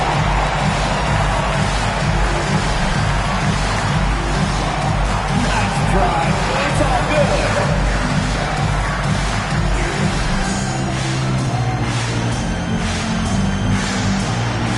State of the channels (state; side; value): identical; both; correlation 1.00